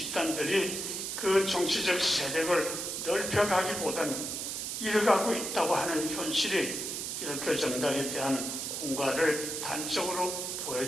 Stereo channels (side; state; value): right; noise; hiss, 4 dB below the sound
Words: 그 정치적 세력을 넓혀가기보다는 잃어가고 있다고 하는 현실이 기독교 정당에 대한 공과를 단적으로